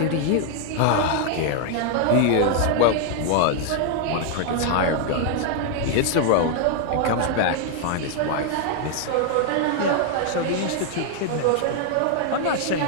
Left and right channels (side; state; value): both; different; correlation 0.00